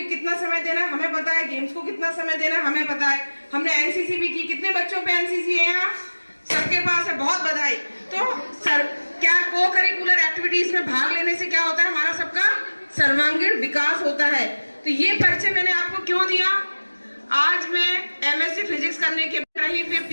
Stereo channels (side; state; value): both; inverted; correlation -1.00